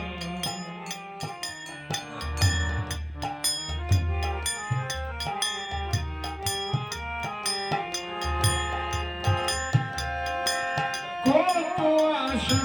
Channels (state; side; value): identical; both; correlation 1.00